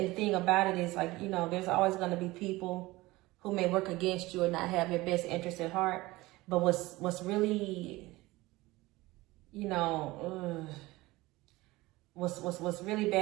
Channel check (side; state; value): left; quieter; 19.9 dB